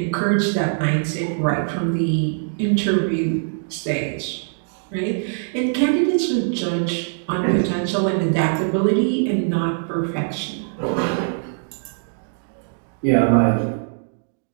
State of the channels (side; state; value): left; silent; digital silence